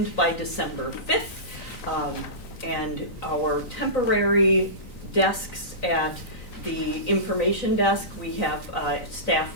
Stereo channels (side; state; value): right; late; 3.9 ms